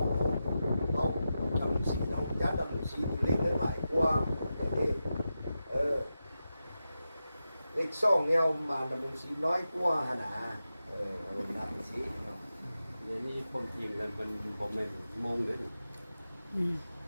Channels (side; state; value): both; inverted; correlation -0.90